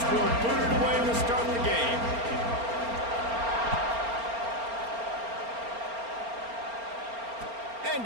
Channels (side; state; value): left; late; 4.3 ms